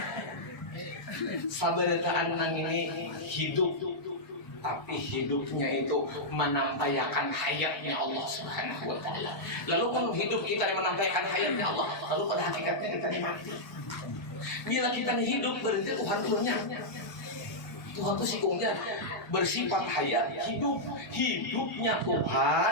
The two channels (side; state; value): right; late; 1.3 ms